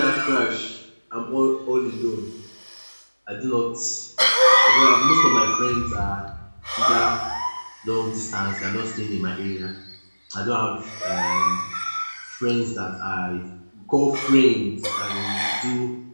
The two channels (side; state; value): both; inverted; correlation -1.00